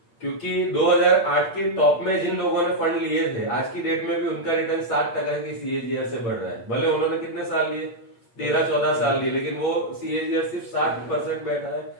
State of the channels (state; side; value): late; right; 8.6 ms